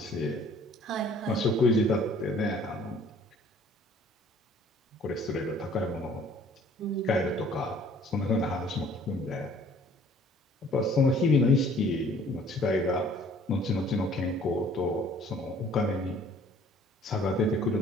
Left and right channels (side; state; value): both; normal; correlation 0.55